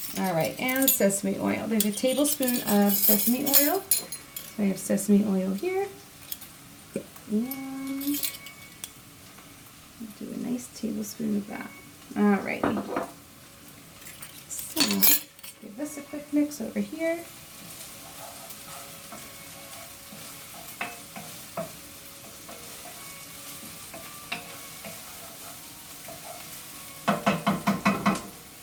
alright, and sesame oil. There's a tablespoon of sesame oil. So I have sesame oil here. And do a nice tablespoon of that. Alright. So let's give this a quick mix over here.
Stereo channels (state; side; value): identical; both; correlation 1.00